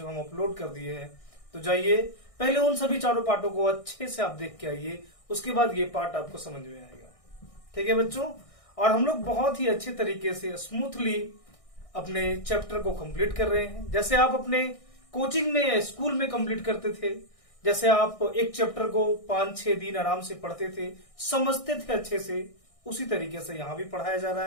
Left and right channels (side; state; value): right; late; 1.6 ms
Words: हम अपलोड कर दिए हैं, तो जाइए पहले उन सभी चारों पार्टों को अच्छे से आप देख के आइए, उसके बाद ये पार्ट आपको समझ में आएगा। ठीक है बच्चों, और हम लोग बहुत ही अच्छे तरीके से स्मूथली अपने चैप्टर को कंप्लीट कर रहे हैं। जैसे आप अपने कोचिंग में या स्कूल में कंप्लीट करते थे, जैसे आप एक चैप्टर को 5-6 दिन आराम से पढ़ते थे, समझते थे अच्छे से, उसी तरीके से यहाँ भी पढ़ाया जा रहा